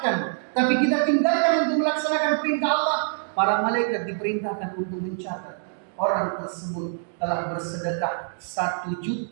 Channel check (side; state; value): left; silent; digital silence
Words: tapi kita tinggalkan untuk melaksanakan perintah Allah, para malaikat diperintahkan untuk mencatat orang tersebut telah bersedekah 1